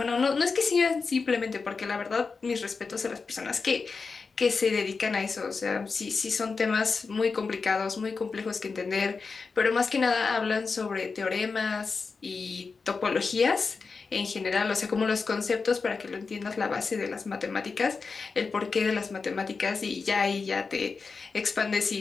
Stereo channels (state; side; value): quieter; right; 4.7 dB